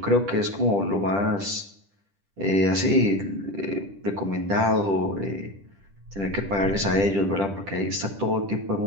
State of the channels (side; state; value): left; late; 10 ms